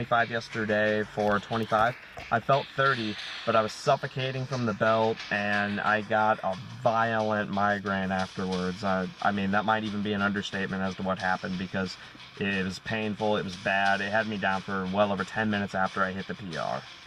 yesterday for 25. I felt 30, but I was suffocating from the belt, and I got a violent migraine afterwards. I mean, that might even be an understatement as to what happened, because it was painful, it was bad. It had me down for well over 10 minutes after I hit the PR.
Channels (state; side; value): identical; both; correlation 1.00